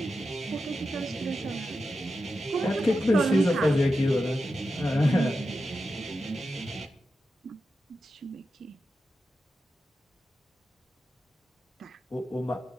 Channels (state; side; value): normal; both; correlation 0.90